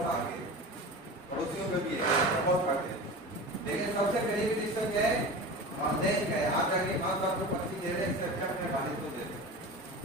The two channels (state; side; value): normal; both; correlation 0.31